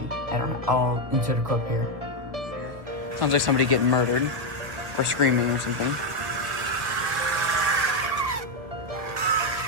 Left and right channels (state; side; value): late; left; 1.8 ms